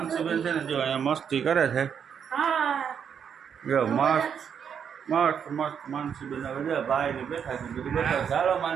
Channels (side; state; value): left; quieter; 7.6 dB